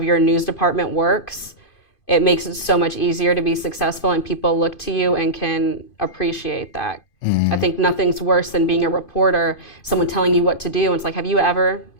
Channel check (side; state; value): right; late; 2.5 ms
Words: your news department works, it makes it so much easier to be successful, and people look to you and can appreciate that. I think nothing's worse than being a reporter, someone telling you what to do, and it's like, have you ever